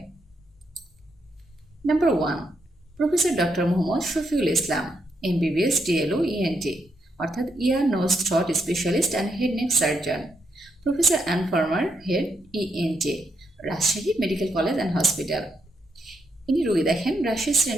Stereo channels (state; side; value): normal; both; correlation 0.78